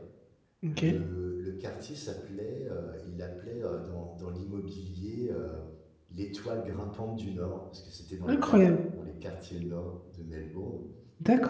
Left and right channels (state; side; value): identical; both; correlation 1.00